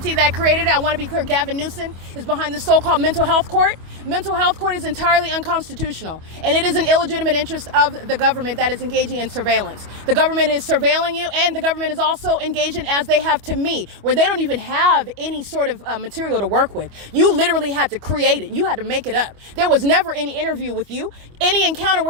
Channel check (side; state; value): left; late; 25 ms